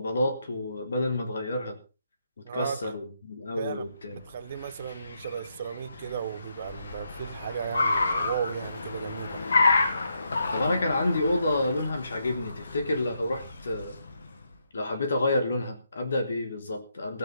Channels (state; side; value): inverted; both; correlation -0.79